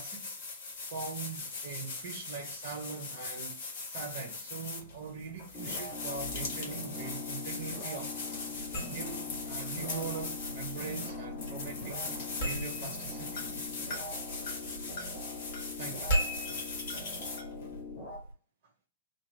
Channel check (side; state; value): both; inverted; correlation -0.38